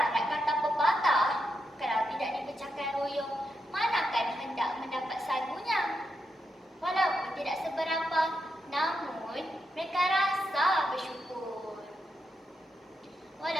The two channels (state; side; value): normal; both; correlation 0.84